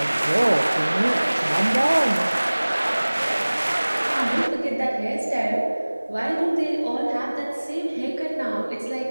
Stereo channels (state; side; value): inverted; both; correlation -1.00